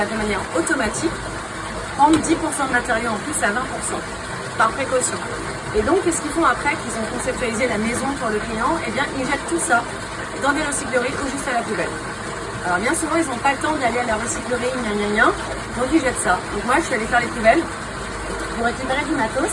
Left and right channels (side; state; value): both; identical; correlation 1.00